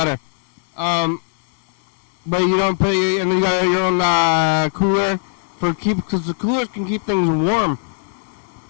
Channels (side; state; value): right; silent; digital silence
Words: But you don't put and you got your own cooler because the coolers can keep things warm.